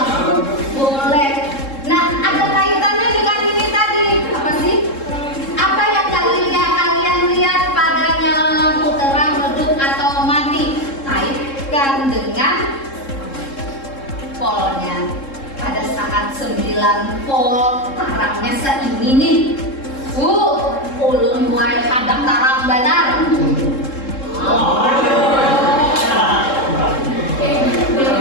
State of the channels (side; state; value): right; late; 3.7 ms